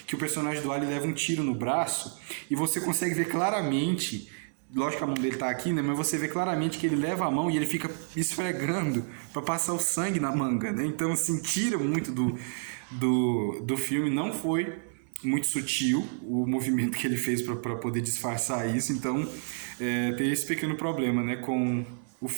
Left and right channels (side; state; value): left; silent; digital silence